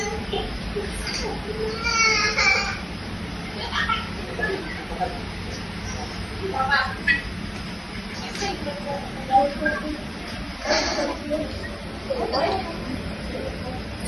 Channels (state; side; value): identical; both; correlation 1.00